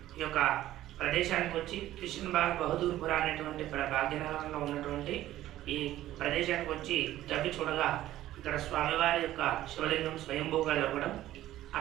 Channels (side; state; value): left; quieter; 14.1 dB